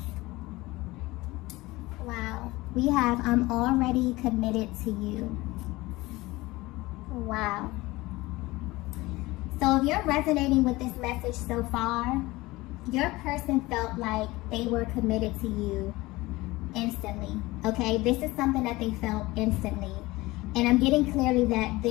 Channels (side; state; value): right; quieter; 20.4 dB